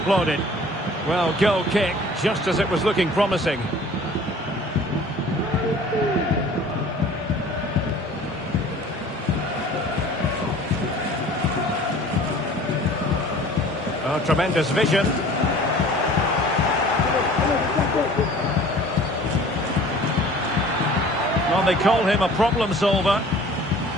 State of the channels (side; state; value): both; normal; correlation 0.48